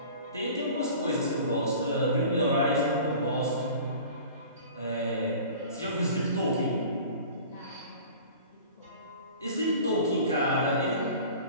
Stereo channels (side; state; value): both; inverted; correlation -0.42